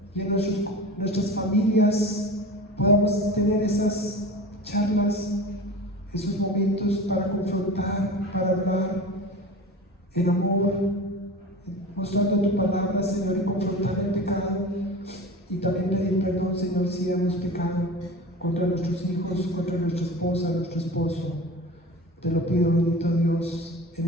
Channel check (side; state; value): both; normal; correlation 0.34